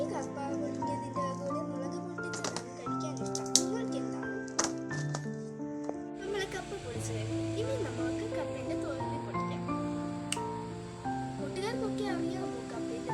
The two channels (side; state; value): both; identical; correlation 1.00